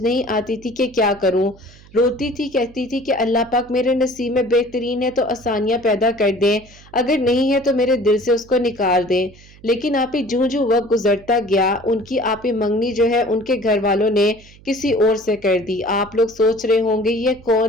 آتی تھی کہ کیا کروں۔ روتی تھی، کہتی تھی کہ اللہ پاک میرے نصیب میں بہترین ہے تو آسانیاں پیدا کر دیں، اگر نہیں ہے تو میرے دل سے اس کو نکال دیں۔ لیکن آپ ہی جوں جوں وقت گزرتا گیا، ان کی آپ ہی منگنی جو ہے ان کے گھر والوں نے کسی اور سے کر دی۔ آپ لوگ سوچ رہے ہوں گے یہ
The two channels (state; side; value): noise; right; hum, 24 dB below the sound